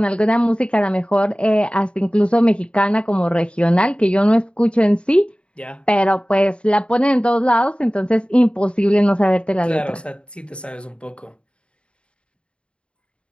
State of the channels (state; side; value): late; right; 0.056 ms